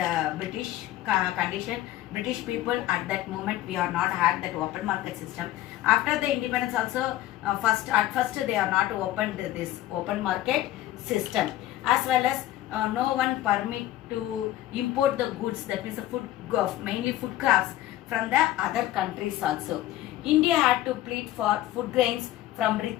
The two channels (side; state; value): right; quieter; 14.5 dB